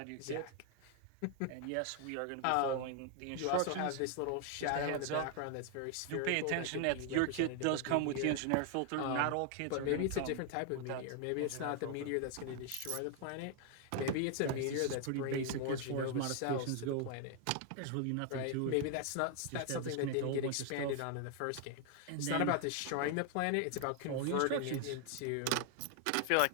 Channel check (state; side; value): different; both; correlation 0.00